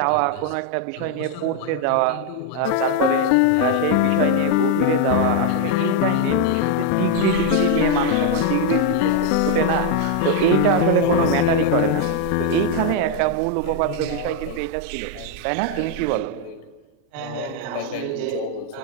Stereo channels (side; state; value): both; different; correlation 0.01